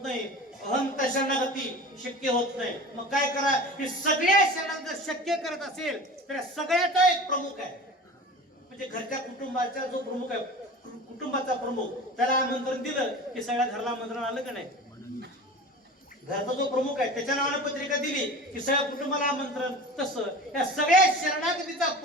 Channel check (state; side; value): normal; both; correlation 0.36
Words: नाही. अहंता शरणागती शक्य होत नाही. मग काय करा? की सगळ्या शरणागत शक्य करत असेल तर सगळ्याचा एक प्रमुख आहे. म्हणजे घरच्या कुटुंबाचा जो प्रमुख आहे, कुटुंबाचा प्रमुख, त्याला आमंत्रण दिलं की सगळ्या घराला आमंत्रण आलं का नाही? घरचा जो प्रमुख आहे त्याच्या नावाने पत्रिका दिली की सगळ्या कुटुंबाला आमंत्रण. तसं या सगळ्या शरणागतीचा